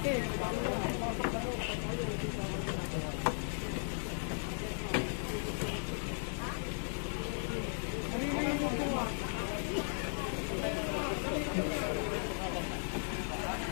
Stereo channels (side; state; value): right; silent; 53 dB below the other